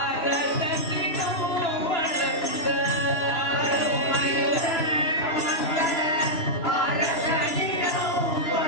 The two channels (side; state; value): right; late; 3.0 ms